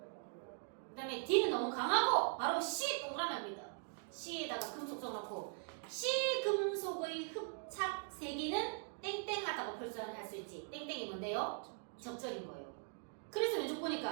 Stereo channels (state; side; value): silent; left; 50 dB below the other